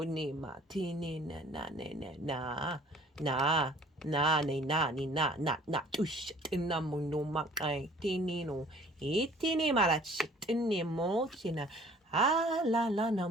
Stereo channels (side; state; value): both; normal; correlation 0.53